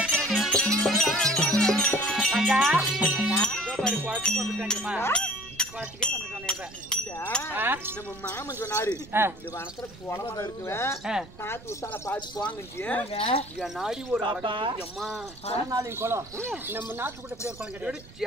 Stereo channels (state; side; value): noise; right; rumble, 19 dB below the sound